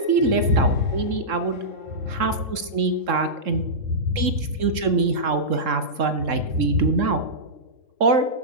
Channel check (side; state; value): left; late; 3.7 ms